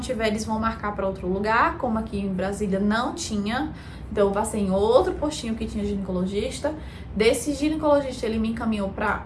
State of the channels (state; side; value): identical; both; correlation 1.00